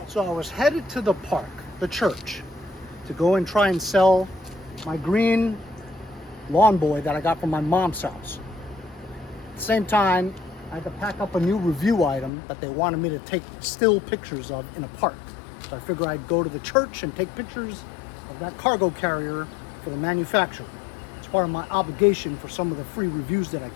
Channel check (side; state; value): right; drops out; at 12.3 s